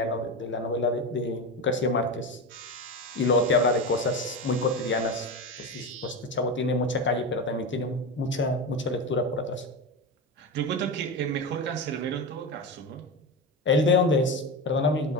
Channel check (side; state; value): both; normal; correlation 0.20